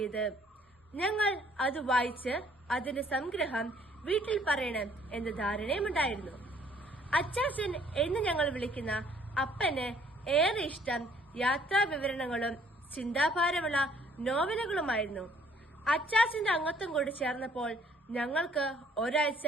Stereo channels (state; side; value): normal; both; correlation 0.61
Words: ഞങ്ങൾ അത് വായിച്ച് അതിന്റെ സംഗ്രഹം വീട്ടിൽ പറയണം എന്ന ധാരണയുമുണ്ടായിരുന്നു. അച്ചാച്ചൻ എന്ന് ഞങ്ങൾ വിളിക്കുന്ന അപ്പന് ഏറെ ഇഷ്ടം യാത്രാ വിവരണങ്ങളും ചിന്താഭാരമുള്ള നോവലുകളുമായിരുന്നു. അച്ചാച്ചന്റെ അംഗത്വം കൂടി ചേർന്നപ്പോൾ ഞങ്ങൾക്ക് ഒരാഴ്ച